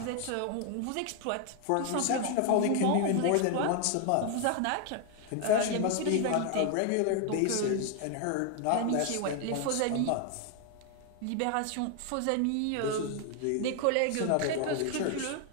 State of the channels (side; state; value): both; different; correlation 0.00